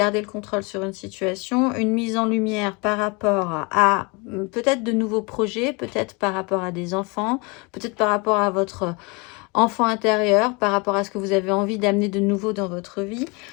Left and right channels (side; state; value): right; quieter; 29.5 dB